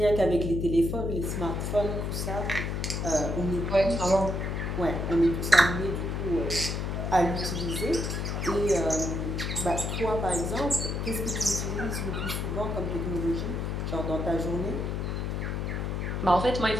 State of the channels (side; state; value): left; noise; hum, 2 dB below the sound